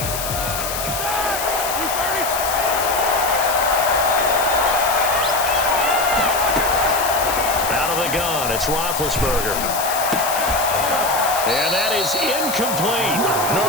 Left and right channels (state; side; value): noise; left; hiss, 5 dB below the sound